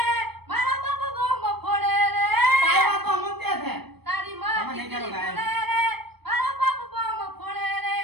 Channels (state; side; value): late; left; 0.97 ms